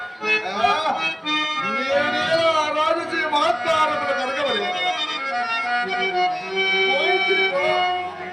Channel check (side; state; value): both; identical; correlation 1.00